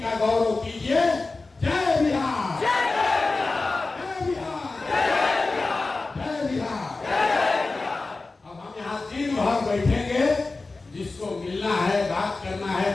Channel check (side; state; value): right; quieter; 3.6 dB